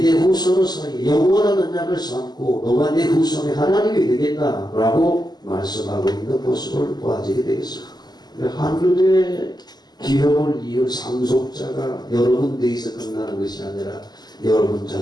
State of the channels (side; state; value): right; late; 0.20 ms